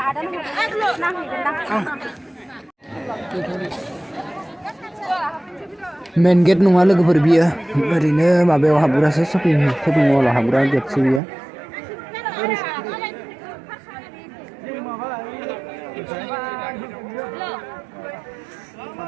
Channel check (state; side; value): drops out; left; at 11.2 s